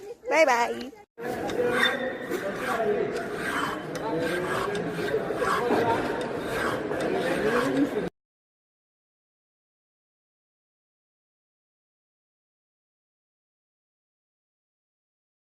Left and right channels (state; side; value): identical; both; correlation 1.00